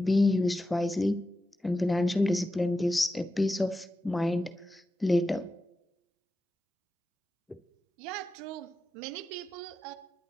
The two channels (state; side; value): normal; both; correlation 0.92